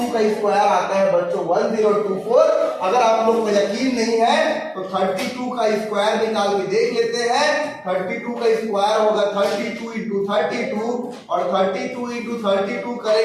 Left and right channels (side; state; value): both; identical; correlation 1.00